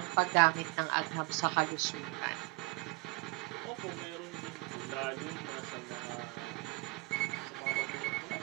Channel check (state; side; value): quieter; left; 24.8 dB